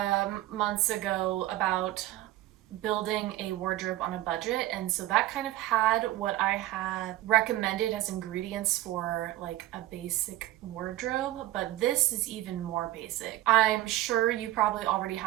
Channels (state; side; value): quieter; left; 15.3 dB